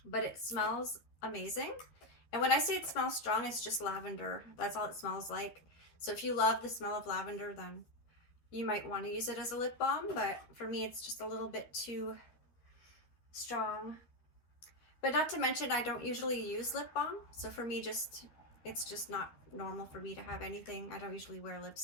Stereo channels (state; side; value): late; right; 13 ms